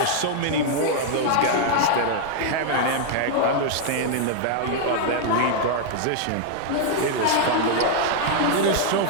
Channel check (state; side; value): different; both; correlation 0.00